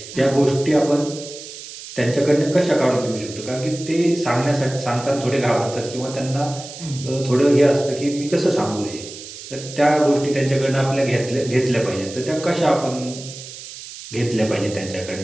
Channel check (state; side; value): noise; right; hiss, 13 dB below the sound